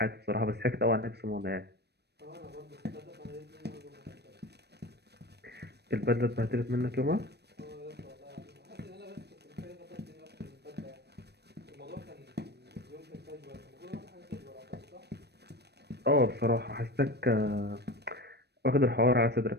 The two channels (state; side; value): late; left; 0.48 ms